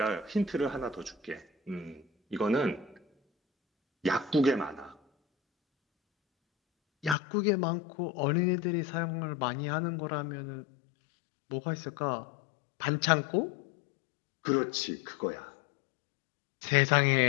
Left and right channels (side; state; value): right; drops out; at 7.2 s